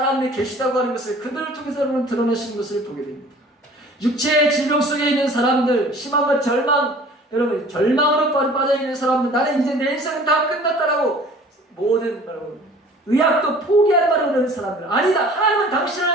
계시다고 하는 것을 그들을 통해서 여러분 드러내시는 것을 보게 됩니다. 육체의 질병 속에 있는 사람들, 심함과 절망, 여러분 절망으로 빠져있는 사람들, 나는 이제 내 인생은 다 끝났다라고 모든 바로 의학도 포기할 바로 그런 사람들, 아니다, 하나님은 당신을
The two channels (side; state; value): both; normal; correlation 0.48